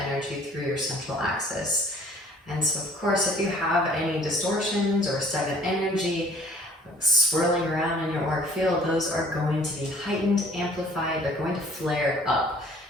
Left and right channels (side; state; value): both; normal; correlation 0.55